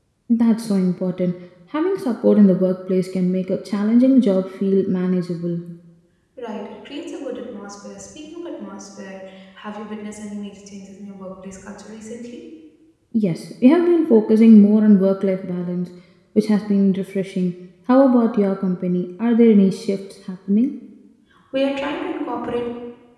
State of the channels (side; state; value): both; identical; correlation 1.00